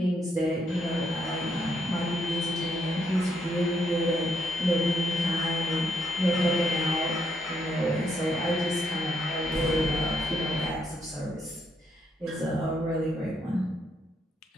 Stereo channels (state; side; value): normal; both; correlation 0.75